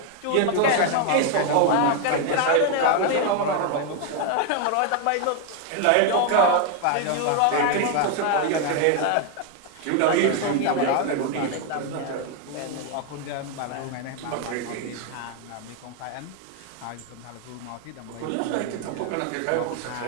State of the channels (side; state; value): both; different; correlation 0.01